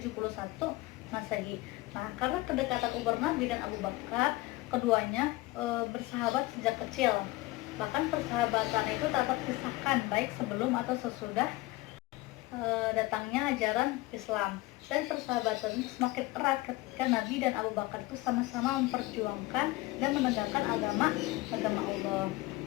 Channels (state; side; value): quieter; right; 19.9 dB